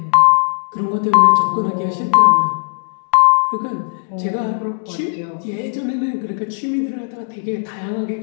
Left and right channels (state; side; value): silent; right; digital silence